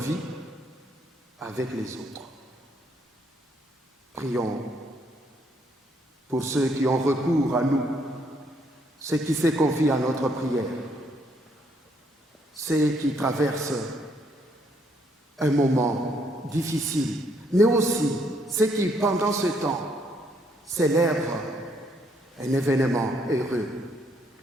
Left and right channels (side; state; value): both; normal; correlation 0.71